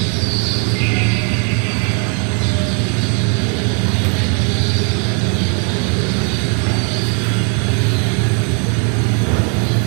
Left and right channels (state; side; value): quieter; left; 39.3 dB